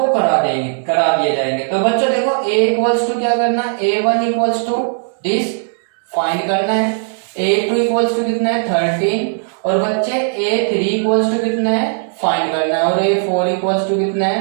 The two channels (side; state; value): left; silent; digital silence